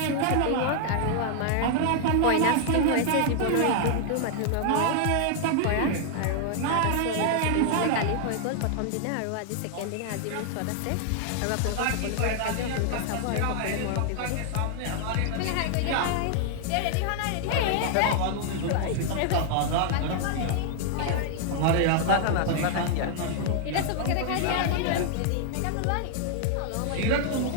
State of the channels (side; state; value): both; different; correlation 0.00